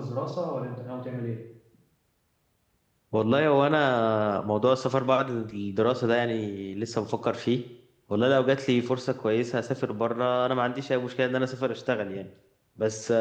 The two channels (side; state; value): both; identical; correlation 1.00